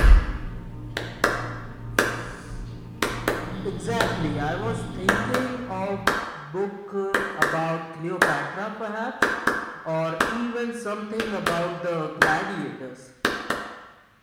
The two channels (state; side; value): identical; both; correlation 1.00